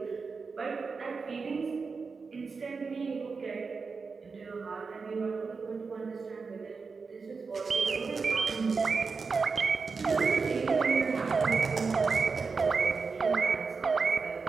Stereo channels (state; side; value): quieter; left; 4.8 dB